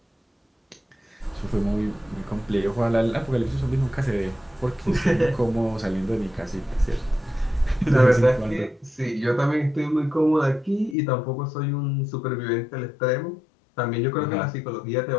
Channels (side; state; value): right; drops out; at 11.0 s